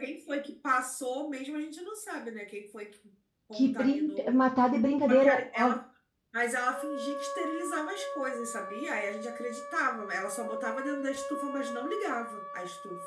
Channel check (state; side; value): identical; both; correlation 1.00